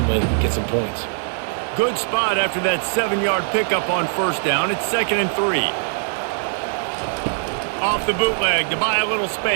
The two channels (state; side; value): silent; left; 65 dB below the other